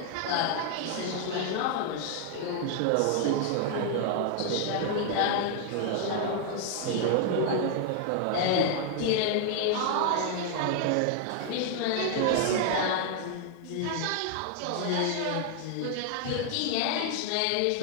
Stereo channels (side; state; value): both; different; correlation 0.00